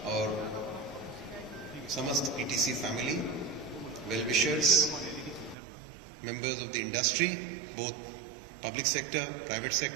और समस्त PTC family, well wishers, members of the industry, both public sector, private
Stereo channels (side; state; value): left; drops out; at 5.6 s